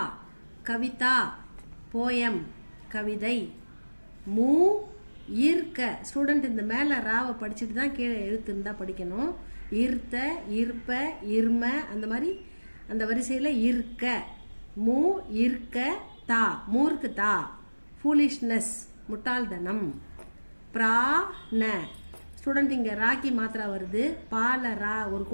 kavita, poem, கவிதை. மூ ஈர்க்க ஸ்டூடெண்ட் இந்த மேலே ராவை படிச்சுட்டு தான் கீழே எழுத்து இருந்தால் படிக்கணும். ஈர்த்த, ஈர்ப்ப, இர்ம அந்த மாதிரி அந்த வரிசையில் இருக்க. மூ ஈர்க்க தா மூர்க்கு தா. ஃபூலிஷ்னஸ் முட்டாள்தனம். பிராண ஸ்டூடெண்ட் இங்கே ராக்கி மாத்திரா வருது. பால ரா ஒரு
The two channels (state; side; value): inverted; both; correlation -1.00